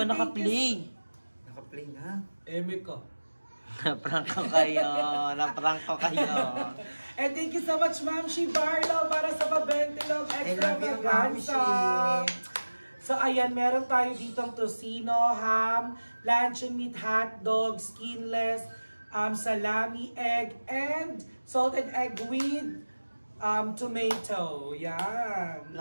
naka-play. Naka-play na. Eme ka. Naprank ko kayo. And thank you so much, Ma'am Shi Barlow, para sa pa-Ventilog I Extra love you, Ma'am Vaganza. Shi. So So ayan, meron tayo ditong tocino, ham, luncheon meat, hotdog, skinless, salami, egg, and salted egg with tomato. Yan.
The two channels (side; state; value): both; inverted; correlation -1.00